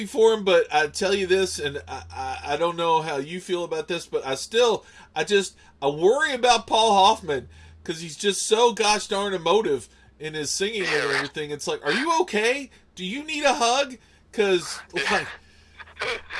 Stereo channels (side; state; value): both; identical; correlation 1.00